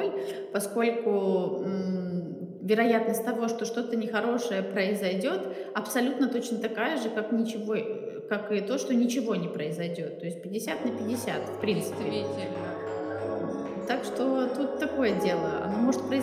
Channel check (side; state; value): both; identical; correlation 1.00